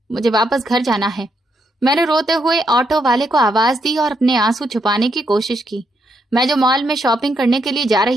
मुझे वापस घर जाना है। मैंने रोते हुए ऑटो वाले को आवाज दी और अपने आंसू छुपाने की कोशिश की। मैं जो मॉल में शॉपिंग करने के लिए जा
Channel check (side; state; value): both; normal; correlation 0.78